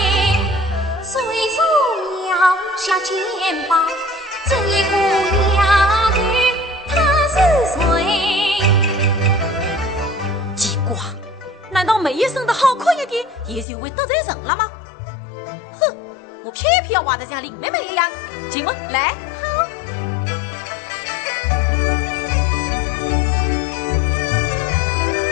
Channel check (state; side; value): drops out; right; at 13.7 s